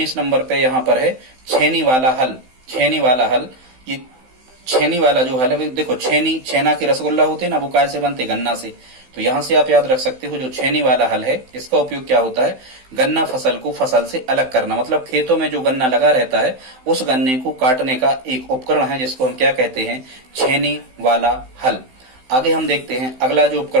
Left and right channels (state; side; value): late; left; 16 ms